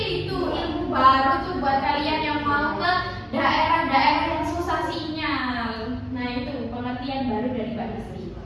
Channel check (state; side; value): identical; both; correlation 1.00